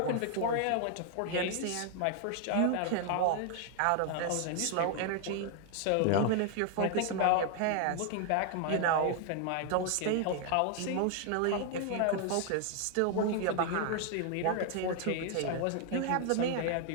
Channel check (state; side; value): different; both; correlation 0.00